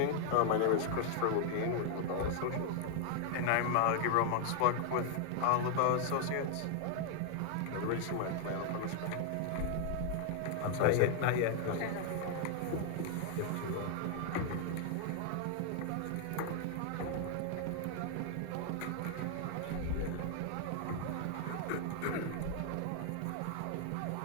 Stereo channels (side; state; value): both; different; correlation 0.00